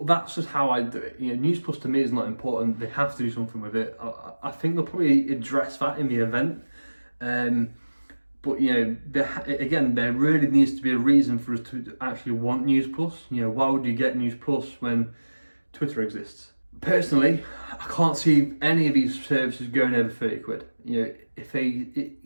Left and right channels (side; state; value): both; inverted; correlation -1.00